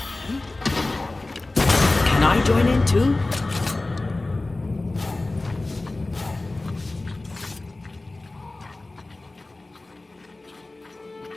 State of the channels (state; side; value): quieter; right; 3.0 dB